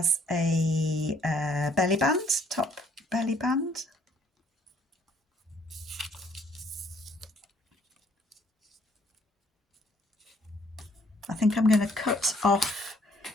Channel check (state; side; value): normal; both; correlation 0.63